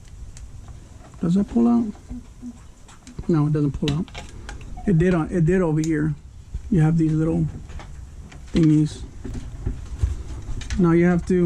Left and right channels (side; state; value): both; identical; correlation 1.00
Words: Does that pull out? No, it doesn't pull out. It did over here. You have these little thingies. Now you have